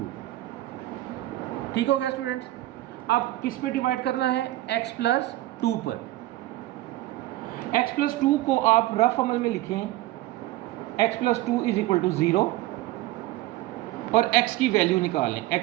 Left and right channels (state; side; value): quieter; left; 16.3 dB